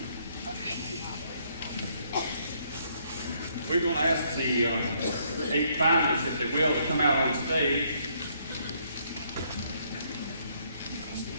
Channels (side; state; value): both; inverted; correlation -0.69